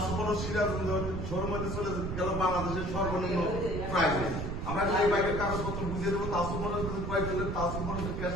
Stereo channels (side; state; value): right; noise; rumble, 3 dB below the sound